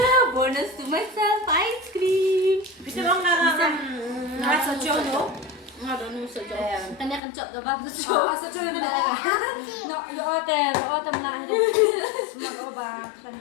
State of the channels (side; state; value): right; drops out; at 7.2 s